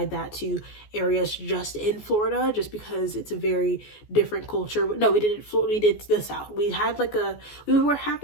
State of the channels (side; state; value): right; late; 14 ms